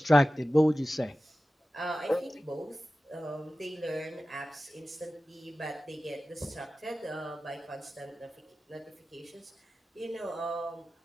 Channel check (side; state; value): both; normal; correlation 0.95